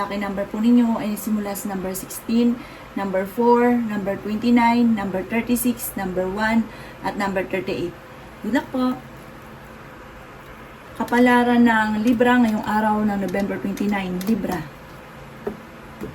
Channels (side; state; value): both; identical; correlation 1.00